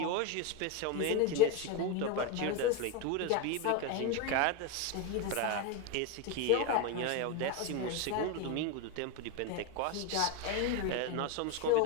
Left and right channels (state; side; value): different; both; correlation 0.03